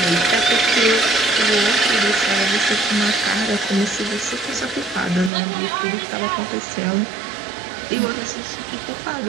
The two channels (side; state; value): left; drops out; at 5.3 s